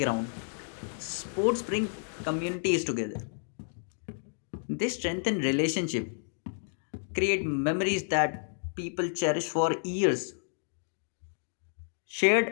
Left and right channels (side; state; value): right; silent; digital silence